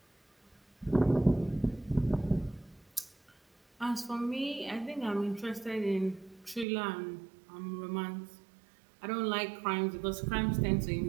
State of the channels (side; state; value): left; drops out; at 6.7 s